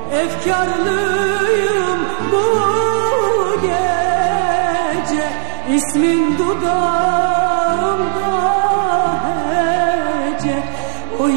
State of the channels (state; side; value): silent; left; digital silence